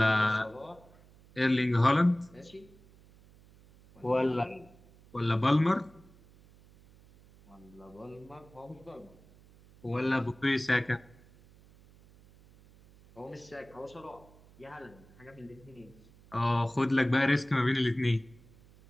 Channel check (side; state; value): right; noise; hum, 25 dB below the sound